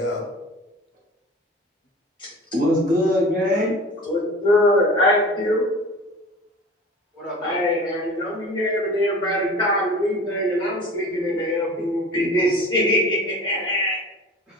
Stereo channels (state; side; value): normal; both; correlation 0.39